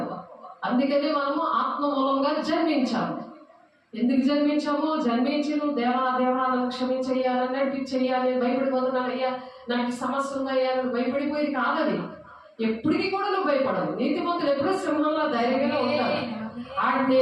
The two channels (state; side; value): identical; both; correlation 1.00